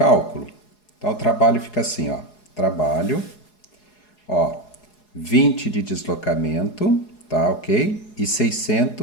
Então, o trabalho fica assim, ó. Trabalho, ó, 20 de deslocamento, tá, ok? E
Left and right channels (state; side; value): late; right; 4.8 ms